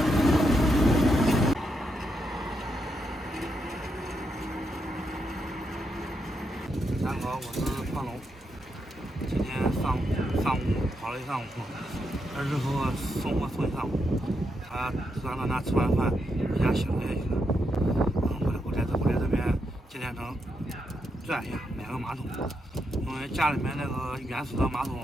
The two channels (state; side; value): normal; both; correlation 0.82